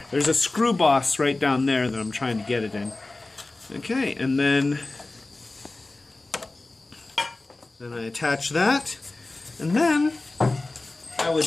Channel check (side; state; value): right; quieter; 3.1 dB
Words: There's a screw boss right down there that I'm trying to get it in. Okay, and then I attach that, and then I